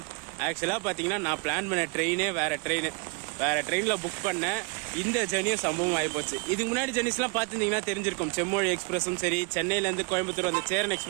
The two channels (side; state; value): left; quieter; 32.3 dB